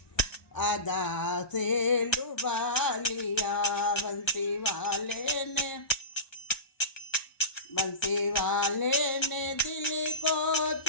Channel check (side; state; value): right; late; 1.0 ms